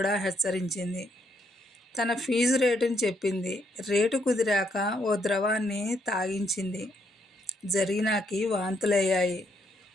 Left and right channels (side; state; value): both; normal; correlation 0.74